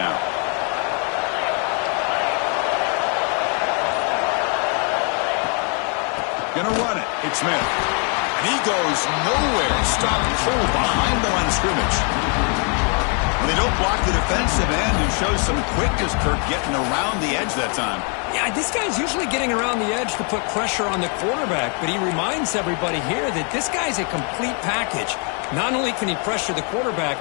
Gonna run it. It's Smith. And he goes nowhere. Stopped cold behind the line of scrimmage. When they don't block the defensive end, who shows some quickness, Kirk, getting around the edge that time. Yeah, this guy's usually getting around the edge to put pressure on the quarterback, but he reminds everybody here that this guy's a complete package. Not only can he pressure the quarterback,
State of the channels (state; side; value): quieter; right; 38.4 dB